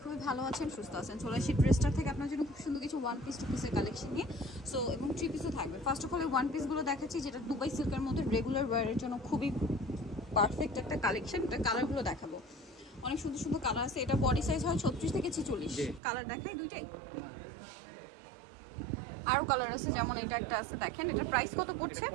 খুবই ভালো আছেন, সুস্থ আছেন। চলে আসি ড্রেসটার থেকে আপনার জন্য খুব সুন্দর কিছু ওয়ান পিস টু পিসের কালেকশন নিয়ে। সো এবং থ্রি পিসও থাকবে। ফার্স্ট অফ অল ওয়ান পিসগুলো দেখাচ্ছি, যেটা দুবাই সিল্কের মধ্যে রেগুলার ওয়্যারের জন্য খুবই পারফেক্ট একটা কালেকশন। এটা কালারগুলো দেখাবো, অনেক সুন্দর সুন্দর কালার আছে। এটা বডি সাইজ হয় 36 থেকে 46। কালার দেখাই দুইটাই। আরো কালার আছে, যেমন এটা একটা আছে, দেখেন এটার প্রাইস কত পড়ছে?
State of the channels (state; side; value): drops out; left; at 16.0 s